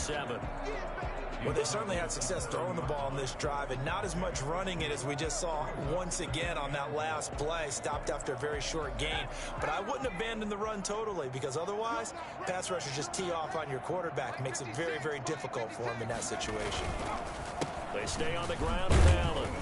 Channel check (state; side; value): identical; both; correlation 1.00